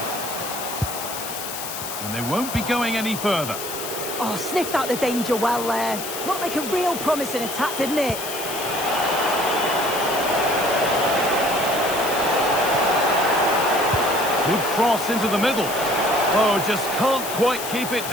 And they won't be going any further. Oh, sniffed out the danger well there. Looked like a real promising attack, didn't it? Good cross into the middle. Oh, just can't quite keep it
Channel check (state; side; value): noise; left; hiss, 7 dB below the sound